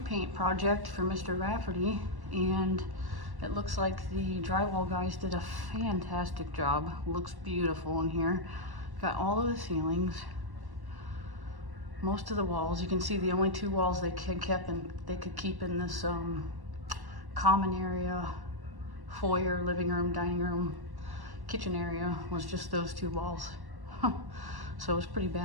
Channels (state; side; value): late; left; 1.1 ms